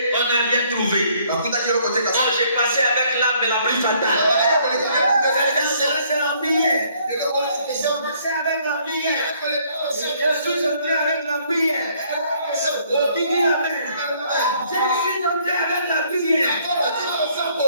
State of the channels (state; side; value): inverted; both; correlation -0.64